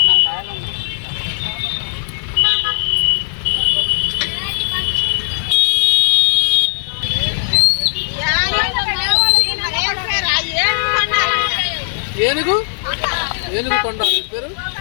ఏనుగు తొండాలి పేరు.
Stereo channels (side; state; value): right; silent; 56 dB below the other